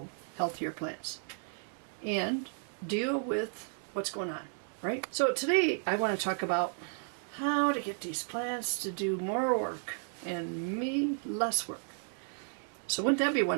healthier plants and deal with what's going on, right? So today I want to talk about how to get these plants to do more work and me less work. So wouldn't that be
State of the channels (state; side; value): silent; left; 55 dB below the other